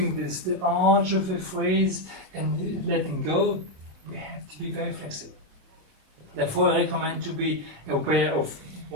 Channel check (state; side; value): late; left; 27 ms